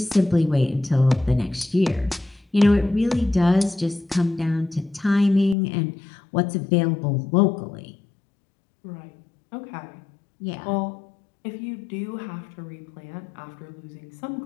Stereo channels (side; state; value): right; drops out; at 5.6 s